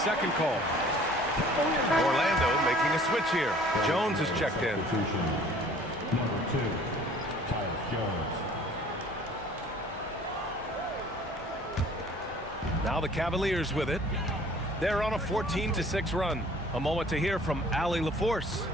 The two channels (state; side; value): normal; both; correlation 0.52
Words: call. Orlando making a switch here. Jones is checked in. Number 2, Jones. Now the Cavaliers with it. They're on a 14-6 run. A moment to hear from Allie LaForce.